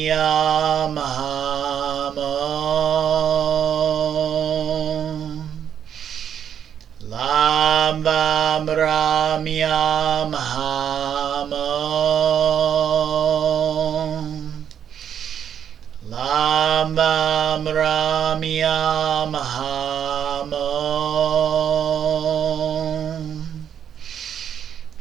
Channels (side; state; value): left; quieter; 8.8 dB